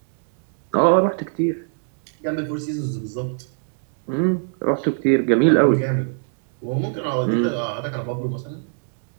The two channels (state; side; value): silent; left; digital silence